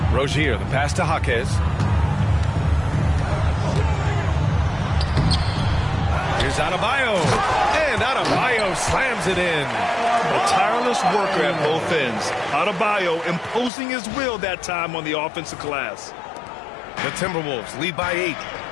Rozier, the pass to Jaquez. Here's Adebayo. And Adebayo slams it in. A tireless worker at both ends. Adebayo imposing his will that time on the offensive glass. The Timberwolves lead by 8.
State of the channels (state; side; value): drops out; right; at 13.7 s